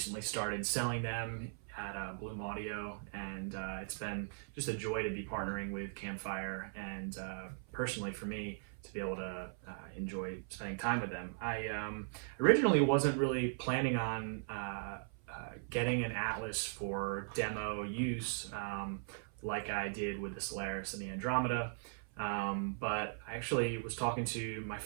started selling them at Bloom Audio, and it's been just a joy to be partnering with Campfire, and personally for me to be able to enjoy spending time with them. I originally wasn't really planning on getting an Atlas for demo use like I did with the Solaris and the Andromeda. But I actually was talking to my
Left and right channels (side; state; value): left; silent; 52 dB below the other